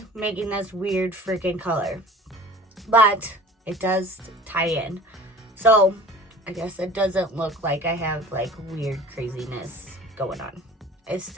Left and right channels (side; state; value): both; normal; correlation 0.44